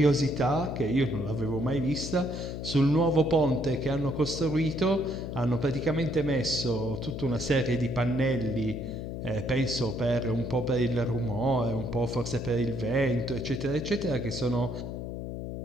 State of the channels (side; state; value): left; noise; hum, 6 dB below the sound